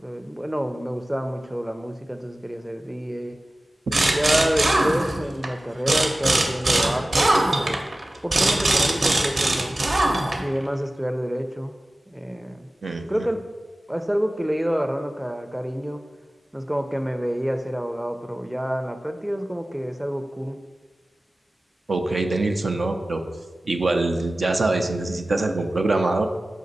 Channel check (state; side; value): normal; both; correlation 0.96